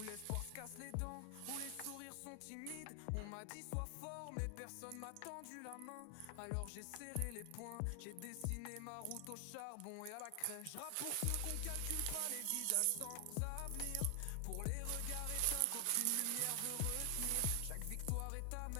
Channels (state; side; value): different; both; correlation 0.00